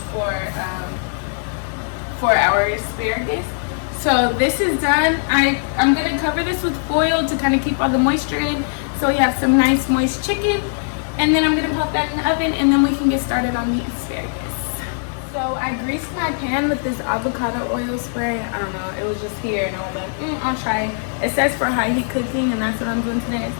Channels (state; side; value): silent; right; digital silence